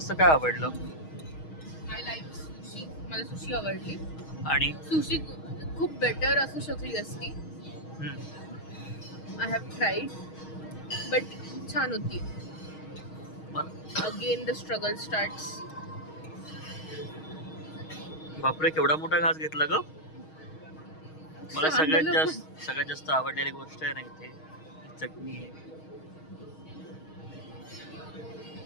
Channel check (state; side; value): late; right; 6.4 ms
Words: काय आवडलं? I like sushi. मला सुशी आवडली. आणि सुशी खूप बेटर असू शकली असती. आय हॅव ट्राईड बट छान होती. Again the struggle starts. बापरे, केवढा मोठा घास घेतला ग. मला सगळ्यात जास्त आवडलेली गोष्ट आहे ना इथे चटणी आहे.